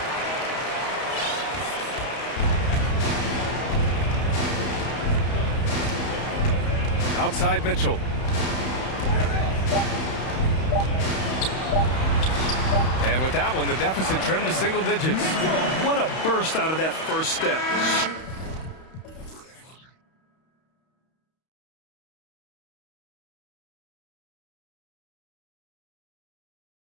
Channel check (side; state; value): right; late; 31 ms